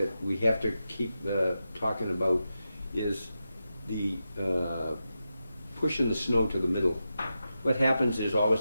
we have to keep talking about is the pushing the snow to the middle. What happens is all of a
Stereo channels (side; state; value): both; inverted; correlation -0.90